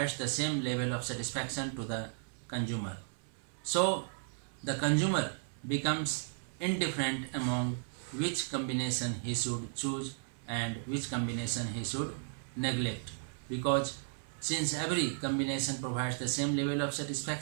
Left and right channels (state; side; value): silent; left; 55 dB below the other